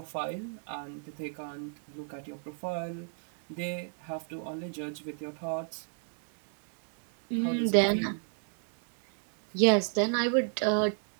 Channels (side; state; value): left; silent; 56 dB below the other